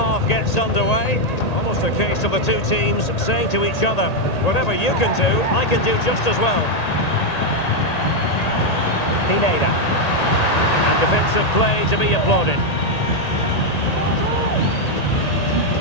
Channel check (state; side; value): late; right; 1.8 ms